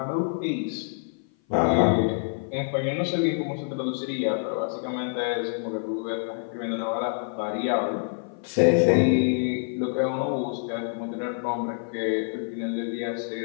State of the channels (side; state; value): right; silent; 55 dB below the other